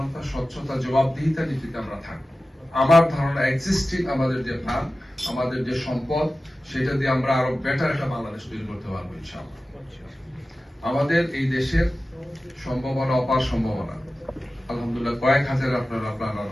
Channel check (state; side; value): normal; both; correlation 0.95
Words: স্বচ্ছতা, জবাবদিহিতা নীতিতে আমরা থাকবো। আমার ধারণা এক্সিস্টিং আমাদের যে প্ল্যান, আমাদের যে সম্পদ, সেটা দিয়ে আমরা আরো বেটার একটা বাংলাদেশ তৈরি করতে পারবো ইনশাআল্লাহ। আমাদের এই দেশের সম্ভাবনা, অপার সম্ভাবনা, আলহামদুলিল্লাহ কয়েক হাজার আপনারা